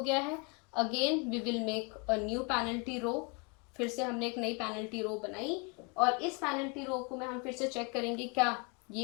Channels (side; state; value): right; quieter; 30.3 dB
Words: गया है. Again we will make a new penalty row. फिर से हमने एक नई पेनल्टी रो बनाई और इस पेनल्टी रो को मैं हम फिर से चेक करेंगे क्या